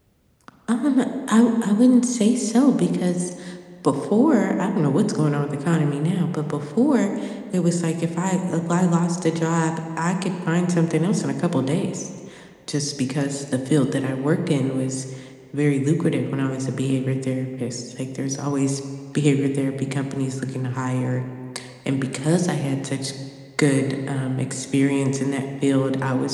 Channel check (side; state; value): both; identical; correlation 1.00